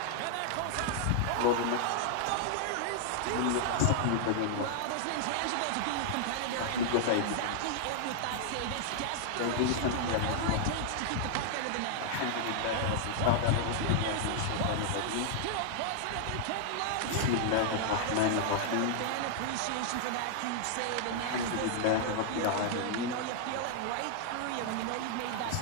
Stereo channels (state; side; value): different; both; correlation 0.00